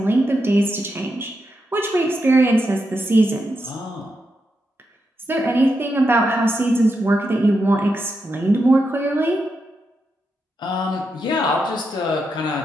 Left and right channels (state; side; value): normal; both; correlation 0.85